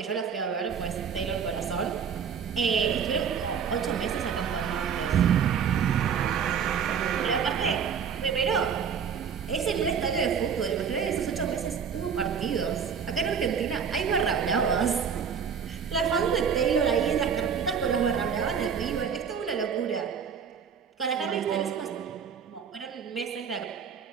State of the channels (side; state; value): left; quieter; 6.9 dB